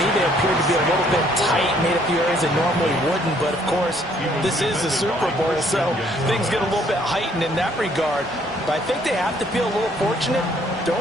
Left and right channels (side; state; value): both; normal; correlation 0.64